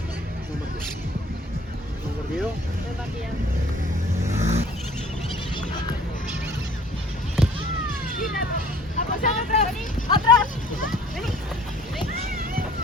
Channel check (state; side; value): normal; both; correlation 0.53